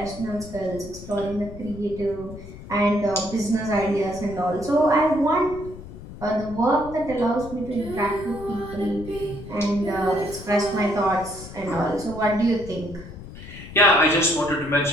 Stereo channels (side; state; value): left; noise; rumble, 14 dB below the sound